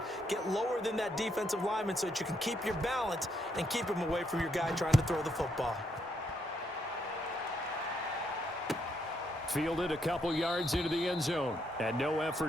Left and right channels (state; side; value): normal; both; correlation 0.76